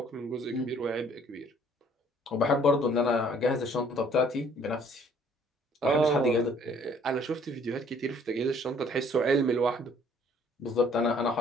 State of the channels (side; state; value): both; normal; correlation 0.59